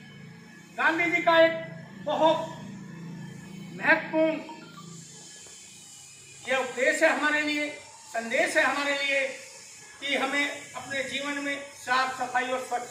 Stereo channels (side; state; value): both; identical; correlation 1.00